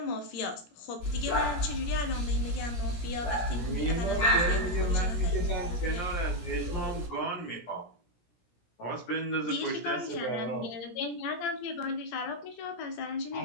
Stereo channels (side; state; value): right; late; 17 ms